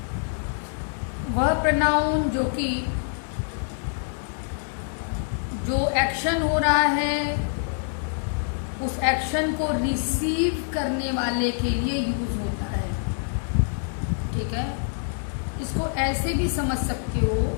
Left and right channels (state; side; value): silent; right; digital silence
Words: वह pronoun जो एक्शन हो रहा है उस एक्शन को रिसीव करने वाले के लिए यूज होता है, ठीक है। इसको ऐसे भी समझ सकते हो